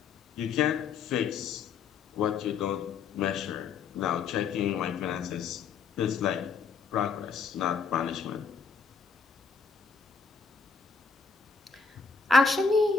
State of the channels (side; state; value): right; quieter; 5.3 dB